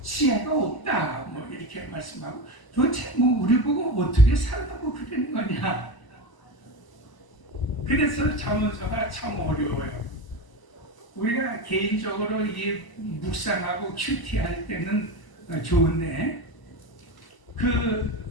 지혜가 없다 뭐 이렇게 말씀하고 도대체 뭐 우리 보고 어떻게 살라고 그러는 거냐. 그래서 잠언서가 참 어려워요. 우리가 개인적으로 이 묵상하고 큐티할 때는 좋은데 그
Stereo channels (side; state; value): right; late; 1.0 ms